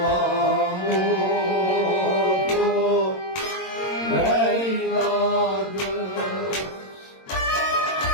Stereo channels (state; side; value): late; right; 22 ms